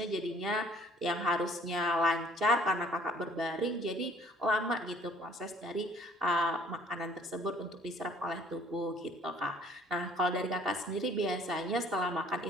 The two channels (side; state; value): both; normal; correlation 0.57